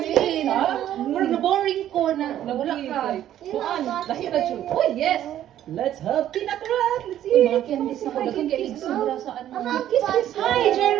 na boring ko na. Nawala ka. Kuan, lahi na siya. Oh, yes! Let's have peanut bread! Let's eat! Mga candies na kagagang candies sobra sa ano. Kiss! Hi,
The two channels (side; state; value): left; quieter; 11.8 dB